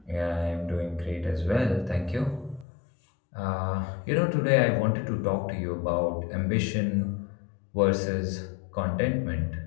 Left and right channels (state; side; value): drops out; right; at 2.7 s